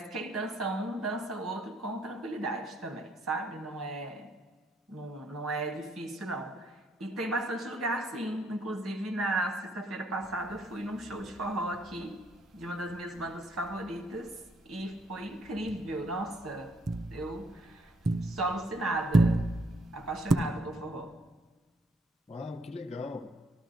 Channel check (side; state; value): both; normal; correlation 0.68